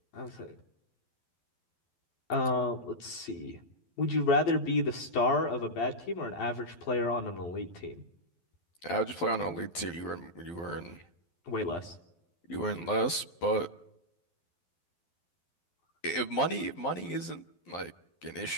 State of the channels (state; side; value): late; right; 12 ms